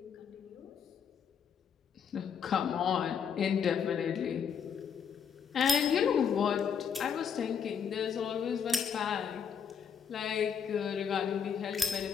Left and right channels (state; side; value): quieter; right; 7.3 dB